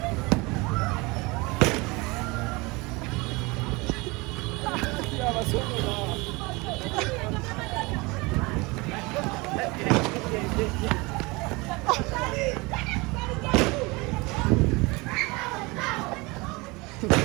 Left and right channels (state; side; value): quieter; left; 25.0 dB